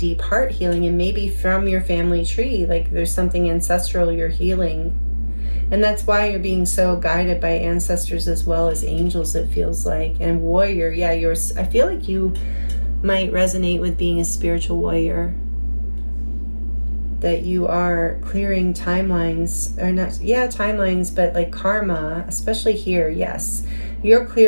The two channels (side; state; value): both; inverted; correlation -1.00